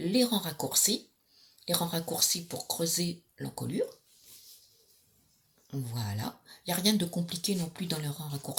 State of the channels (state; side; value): identical; both; correlation 1.00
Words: rangs raccourcis. Les rangs raccourcis pour creuser l'encolure. Voilà. Il n'y a rien de compliqué non plus dans les rangs